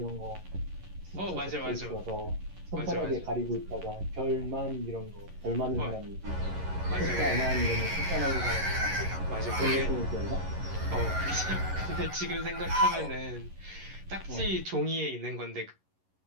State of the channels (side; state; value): left; late; 11 ms